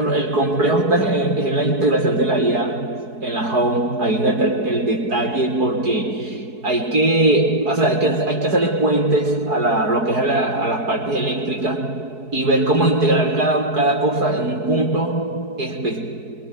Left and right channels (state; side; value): late; left; 4.7 ms